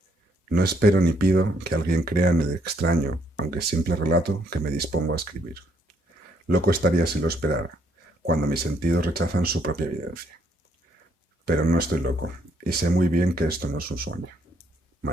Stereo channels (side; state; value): both; normal; correlation 0.71